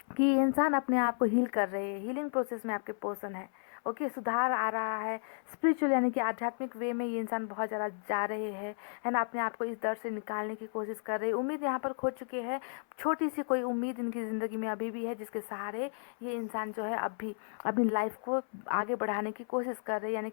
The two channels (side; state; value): right; silent; 56 dB below the other